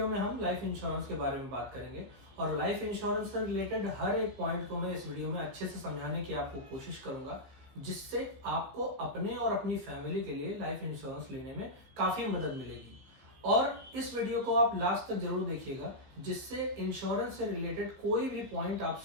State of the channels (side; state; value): left; late; 15 ms